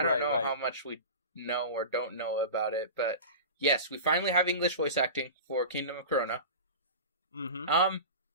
don't know how much we know or don't know about it. But yes, we finally have English voice acting for Kingdom of Corona.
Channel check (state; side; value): inverted; both; correlation -0.30